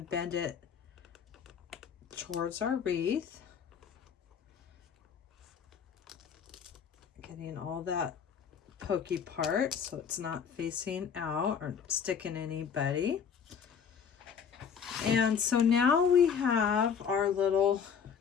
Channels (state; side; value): quieter; right; 7.0 dB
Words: bend it towards our wreath. Getting all that pokey part so it's not facing out or sticking anybody. And so now we have our little